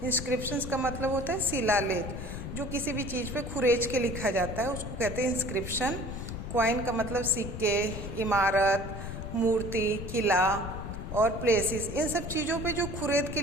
इंस्क्रिप्शंस का मतलब होता है शिलालेख, जो किसी भी चीज़ पे खुरेच के लिखा जाता है उसको कहते हैं इंस्क्रिप्शन। कॉइन का मतलब सिक्के, इमारत, मूर्ति, किला और प्लेसेस, इन सब चीज़ों पे जो खुरेद के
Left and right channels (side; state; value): left; noise; rumble, 7 dB below the sound